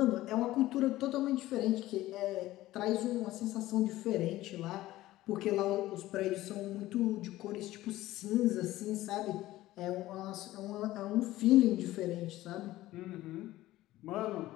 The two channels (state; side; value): quieter; right; 16.1 dB